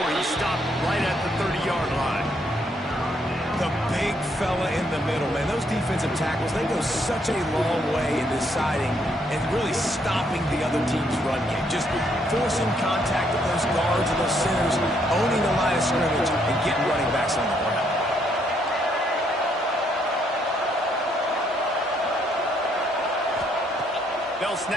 he's stopped right at the 30-yard line. The big fella in the middle, man. Those defensive tackles, they go such a long way in deciding and really stopping the other team's run game. Just forcing contact with those guards and those centers, owning the line of scrimmage, and getting running backs on the ground. They'll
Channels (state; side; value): normal; both; correlation 0.72